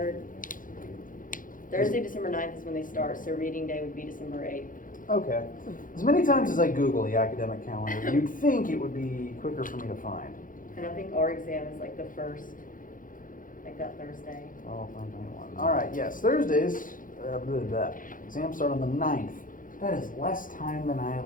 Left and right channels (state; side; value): late; right; 0.39 ms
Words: Thursday, December 9th is when they start, so reading day would be December 8th. Okay. As many times as I Google the academic calendar, you'd think it would be quicker for me to find. And I think our exam is like the first, like that Thursday. Oh, 2021. All right, yes, Thursdays, exams start on the 9th. That is less time than I